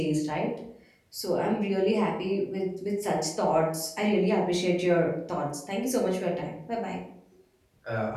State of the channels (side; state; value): both; identical; correlation 1.00